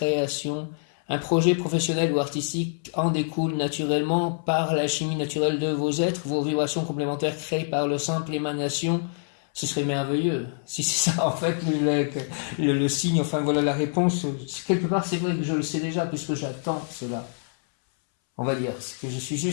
Un projet professionnel ou artistique en découle naturellement par la chimie naturelle de vos êtres, vos vibrations complémentaires créées par le simple émanation. Ce serait merveilleux. Si c'est ça, en fait, le signe, enfin voilà la réponse. Quelque part, c'est vrai que je le sais déjà, puisque j'attends cela. On va dire que je suis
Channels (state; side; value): silent; right; 61 dB below the other